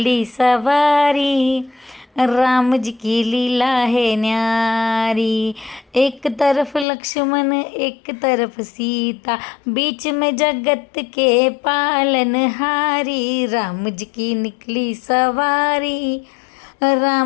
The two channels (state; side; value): drops out; right; at 6.9 s